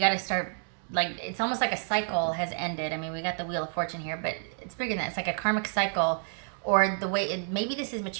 start, like, it's almost like a cycle has ended. I mean, we got the Wheel of Fortune here, but it's bigger than that. It's like a karmic cycle, or the way maybe this is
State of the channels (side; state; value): left; silent; 55 dB below the other